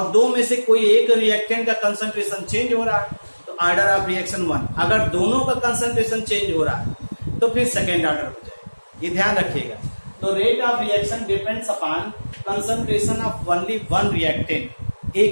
दो में से कोई एक रिएक्टेंट का कंसंट्रेशन चेंज हो रहा है तो ऑर्डर ऑफ रिएक्शन 1। अगर दोनों का कंसंट्रेशन चेंज हो रहा है तो फिर सेकेंड ऑर्डर हो जाएगा, ये ध्यान रखिएगा। तो rate of reaction depends upon concentration of only one reactant,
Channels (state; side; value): inverted; both; correlation -1.00